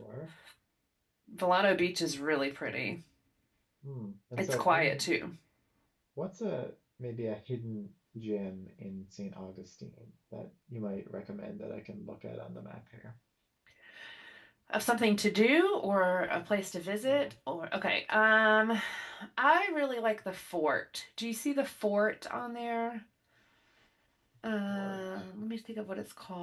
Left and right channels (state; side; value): identical; both; correlation 1.00